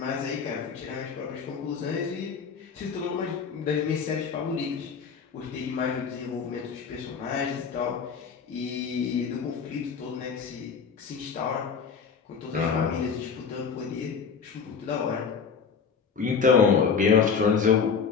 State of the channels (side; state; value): right; quieter; 6.0 dB